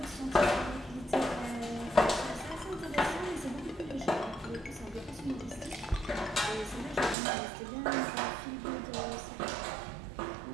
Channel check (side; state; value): left; drops out; at 7.2 s